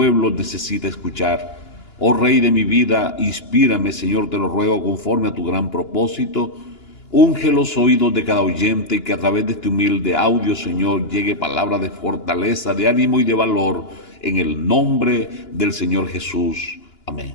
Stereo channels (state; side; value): late; right; 2.9 ms